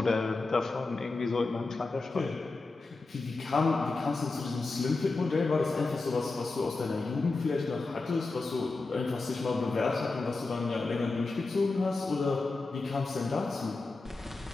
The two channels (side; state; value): right; quieter; 3.6 dB